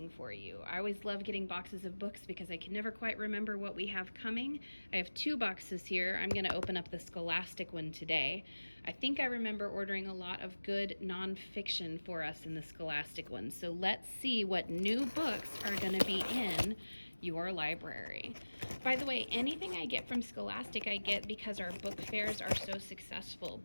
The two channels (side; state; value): both; inverted; correlation -1.00